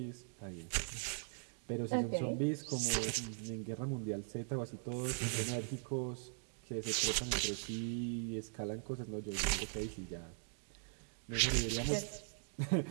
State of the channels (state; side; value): silent; left; digital silence